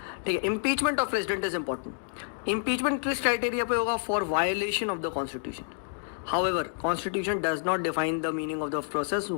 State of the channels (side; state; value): right; silent; digital silence